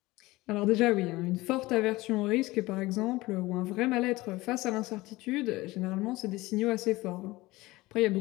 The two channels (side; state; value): right; quieter; 19.9 dB